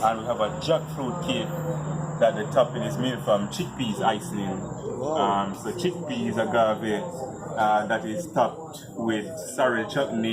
And we have a jackfruit cake that the topping is made from chickpeas icing. Wow. So chickpeas agave that is topped with sorry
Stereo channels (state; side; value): identical; both; correlation 1.00